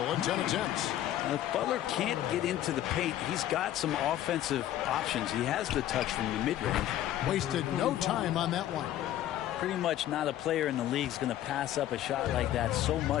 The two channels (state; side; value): quieter; right; 12.6 dB